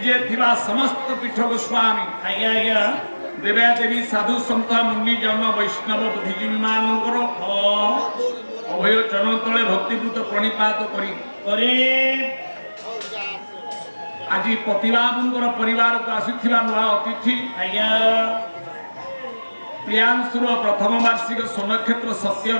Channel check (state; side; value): inverted; both; correlation -1.00